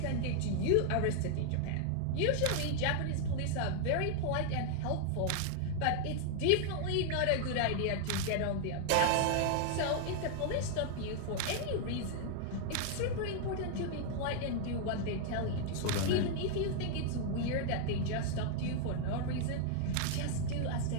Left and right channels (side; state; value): both; different; correlation 0.00